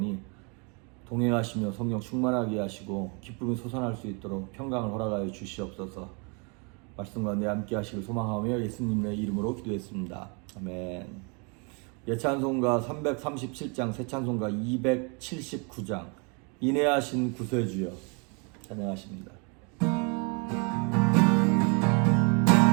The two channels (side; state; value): left; quieter; 33.9 dB